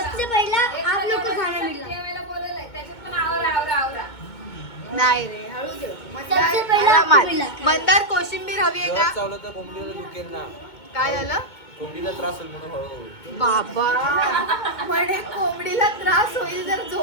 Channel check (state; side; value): late; right; 2.2 ms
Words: सबसे पहला आप लोग को खाना मिला नाही रे हळू जेव. सबसे पहिला आरामात. आपल्याला. मंदार कोशिंबीर हवी आहे का चावलं तर कोंबडीला दुखेल ना. काय झालं कोंबडीला त्रास होईल म्हणून हळूहळू. बाबा म्हणे कोंबडीला त्रास होईल जर